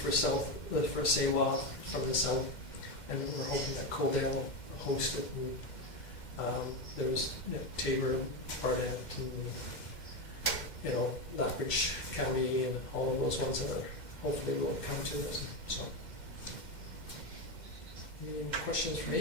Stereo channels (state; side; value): late; right; 2.1 ms